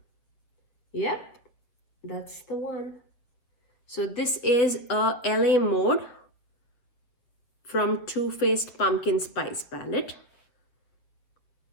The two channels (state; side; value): late; right; 7.4 ms